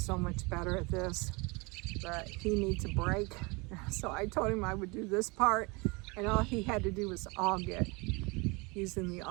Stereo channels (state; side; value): quieter; left; 27.5 dB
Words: so much better at this, but he needs a break. So I told him I would do this part, and all he had to do was aug it using the